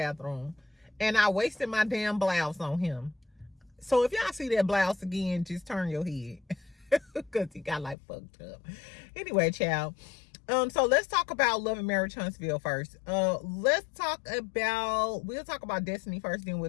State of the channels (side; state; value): right; drops out; at 8.0 s